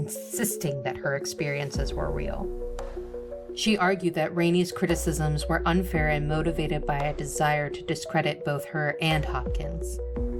that her experiences were real. She argued that Rainey's criticisms were unfair and motivated by a desire to discredit both her and Hopkins.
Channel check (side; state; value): both; identical; correlation 1.00